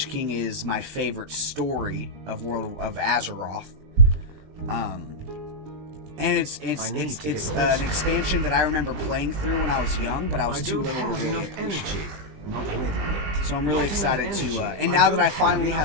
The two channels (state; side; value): late; left; 20 ms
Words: King is my favorite story of of Azeroth. And it's I need to get an closer. expansion that I remember playing through when I was young, but I was I too don't little to have really enough appreciate. energy. Not ready yet. So I'm really Not excited enough to, energy. and now that don't I finally